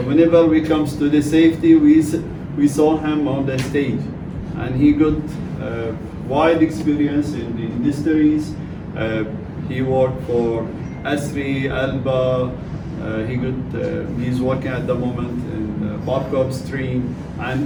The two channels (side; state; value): both; identical; correlation 1.00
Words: whenever we comes to the safety, we saw him on the stage, and he got wide experience in the industries. He worked for Asri, Alba. He's working at the moment in Park Upstream,